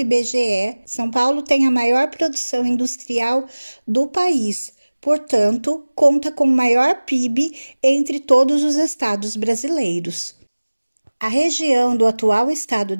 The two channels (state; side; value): inverted; both; correlation -1.00